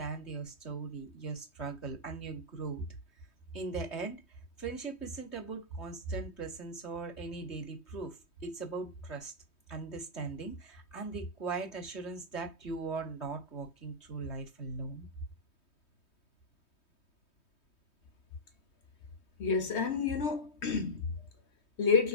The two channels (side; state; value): right; late; 3.2 ms